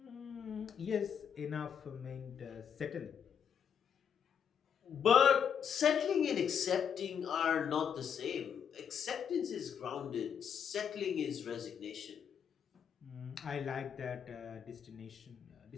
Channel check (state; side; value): quieter; right; 7.8 dB